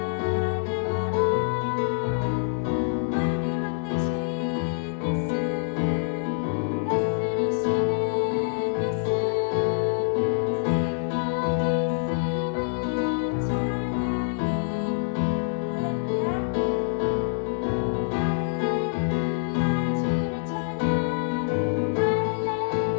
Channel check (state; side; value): silent; right; digital silence